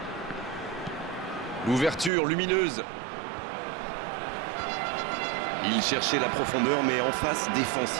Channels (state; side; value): drops out; left; at 2.1 s